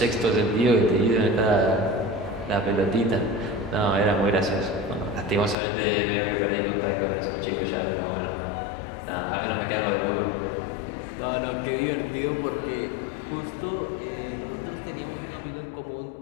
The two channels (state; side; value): drops out; right; at 5.6 s